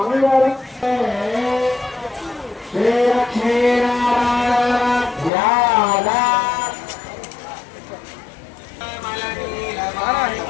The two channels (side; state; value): right; drops out; at 5.3 s